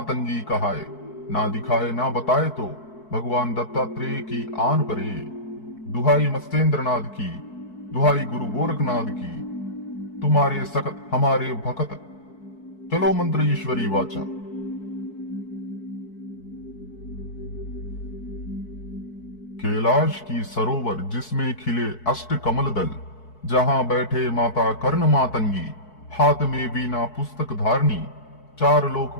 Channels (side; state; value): right; late; 4.6 ms